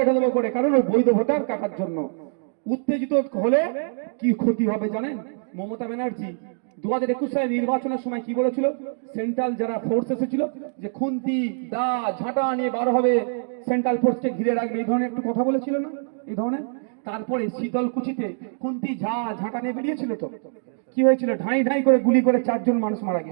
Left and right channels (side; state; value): left; silent; digital silence